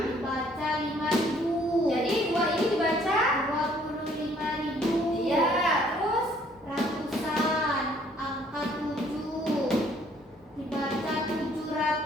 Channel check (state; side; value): normal; both; correlation 0.62